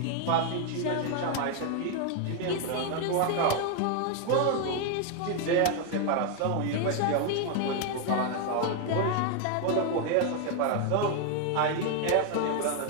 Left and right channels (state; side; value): different; both; correlation 0.01